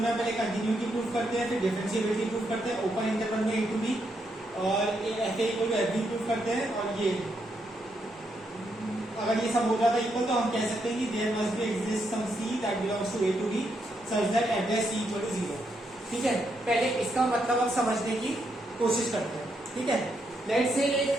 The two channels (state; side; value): normal; both; correlation 0.79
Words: में पहले कंटिन्यूटी प्रूफ करते हैं, फिर डिफरेंशिएबिलिटी प्रूफ करते हैं, ओपन इंटरवल में ए टू बी और F A equal to F B proof करते हैं। और ये अगर ये सब हो जाता है इक्वल तो हम कह सकते हैं कि there must be exist some C that belongs to A to B such that address C equal to 0। ठीक है, पहले इसका मतलब अब समझने की कोशिश करते हैं। ठीक है, लेट्स से एक